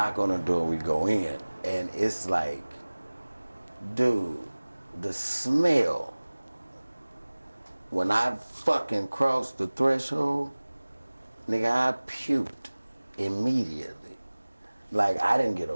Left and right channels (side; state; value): both; inverted; correlation -1.00